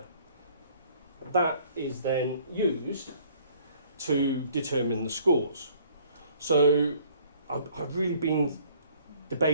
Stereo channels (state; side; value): inverted; both; correlation -0.58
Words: That is then used to determine the scores. So I've really been